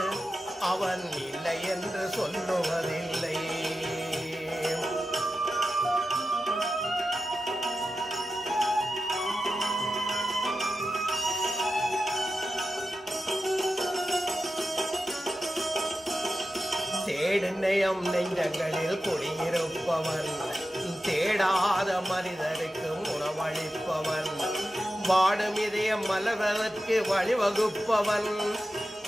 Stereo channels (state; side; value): normal; both; correlation 0.91